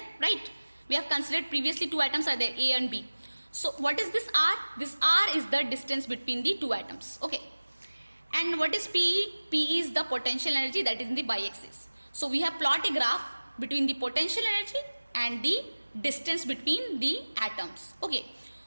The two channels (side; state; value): both; inverted; correlation -1.00